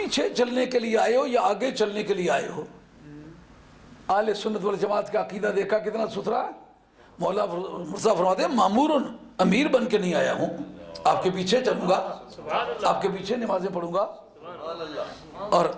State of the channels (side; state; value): both; identical; correlation 1.00